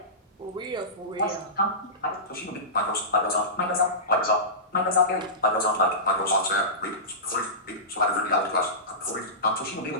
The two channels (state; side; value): normal; both; correlation -0.20